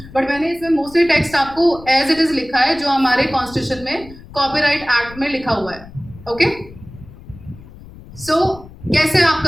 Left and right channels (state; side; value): noise; left; rumble, 18 dB below the sound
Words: बट मैंने इसमें मोस्टली टेक्स्ट आपको एज इट इज लिखा है जो हमारे कॉन्स्टिट्यूशन में कॉपीराइट एक्ट में लिखा हुआ है. ओके, सो कैसे आप